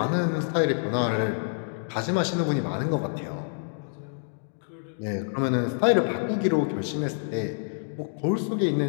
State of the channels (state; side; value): silent; right; digital silence